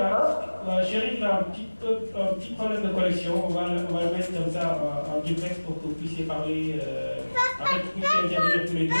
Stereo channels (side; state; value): both; inverted; correlation -1.00